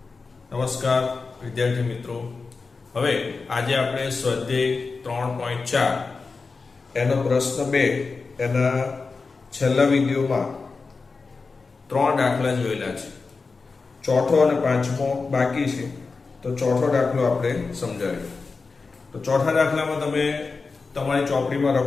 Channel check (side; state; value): right; quieter; 4.3 dB